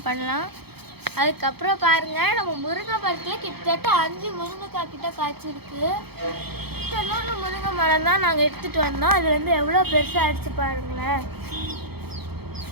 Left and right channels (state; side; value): late; left; 0.96 ms